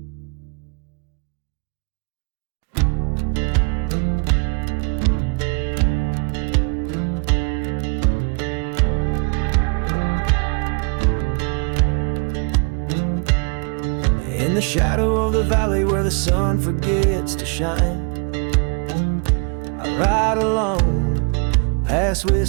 the shadow of the valley where the sun forgets to shine, I ride alone, past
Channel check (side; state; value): left; quieter; 35.8 dB